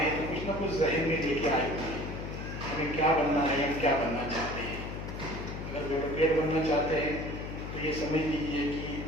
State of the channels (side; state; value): left; noise; hum, 7 dB below the sound